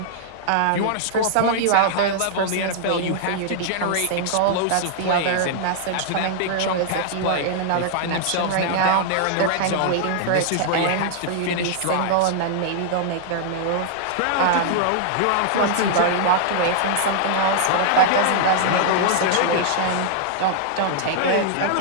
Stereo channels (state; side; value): different; both; correlation -0.01